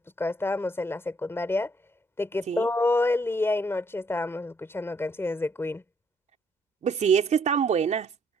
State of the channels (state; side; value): normal; both; correlation 0.68